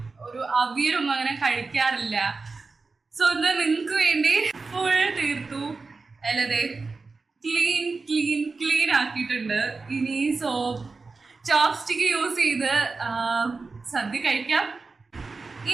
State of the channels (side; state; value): left; quieter; 4.1 dB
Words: ഒരു അവിയലൊന്നും അങ്ങനെ കഴിക്കാറില്ല. സോ ഇത് നിങ്ങൾക്ക് വേണ്ടി ഫുൾ തീർത്തു. അല്ലതെ ക്ലീൻ ആക്കിയിട്ടുണ്ട്. ഇനി ചോപ്സ്റ്റിക്ക് യൂസ് ചെയ്ത് സദ്യ കഴിക്കാം.